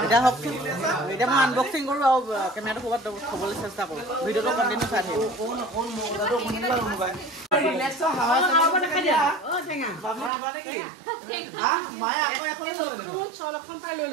এতিয়া হওক এতিয়া মই আনবক্সিং কৰোঁ আৰু কেমেৰাটো ক'ৰবাত থ'বলৈ চেষ্টা কৰোঁ ভিডিঅ'টো কণ্টিনিউ চাই থাকিব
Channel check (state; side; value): drops out; left; at 10.3 s